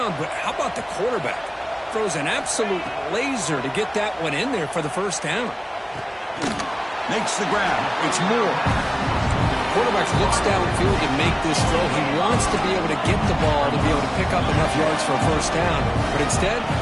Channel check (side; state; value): both; identical; correlation 1.00